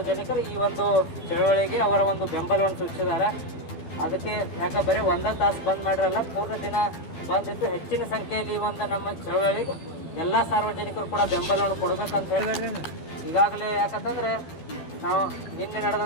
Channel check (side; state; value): right; late; 12 ms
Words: ಈ ಒಂದು ಚಳವಳಿಗೆ ಅವರ ಒಂದು ಬೆಂಬಲವನ್ನು ಸೂಚಿಸಿದ್ದಾರೆ. ಅದಕ್ಕೆ ಯಾಕೆ ಬರೀ ಒಂದೇ ತಾಸು ಬಂದ್ ಮಾಡಿರಲ್ಲ, ಪೂರ್ಣ ದಿನ ಬಂದಿದ್ದು ಹೆಚ್ಚಿನ ಸಂಖ್ಯೆಯಲ್ಲಿ ಈ ಒಂದು ನಮ್ಮ ಚಳವಳಿಗೆ ಎಲ್ಲ ಸಾರ್ವಜನಿಕರು ಕೂಡ ಬೆಂಬಲವನ್ನು ಕೊಡಬೇಕಂತ ಹೇಳಿ ಈಗಾಗಲೇ ಯಾಕಂತಂದ್ರೆ ನಾವು ನಿನ್ನೆ